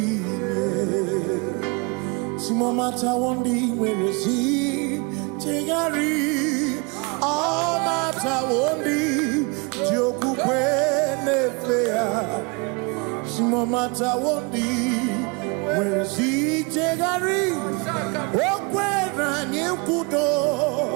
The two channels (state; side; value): quieter; left; 30.6 dB